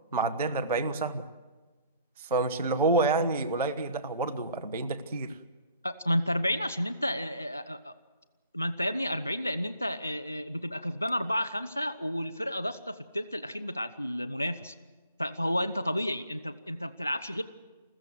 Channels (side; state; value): both; inverted; correlation -0.58